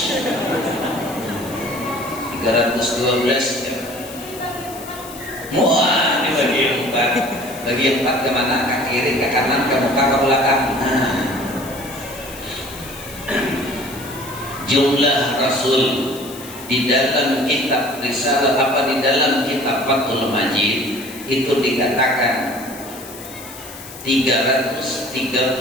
312 ya. Muah dibagi empat. Bagi empat kemana? Ke kiri, ke kanan, ke muka, ke belakang. Nah. Jumlah Rasul di dalam kitab Risalah apa di dalam kitab Fathul Majid itu dikatakan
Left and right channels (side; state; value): left; noise; hiss, 15 dB below the sound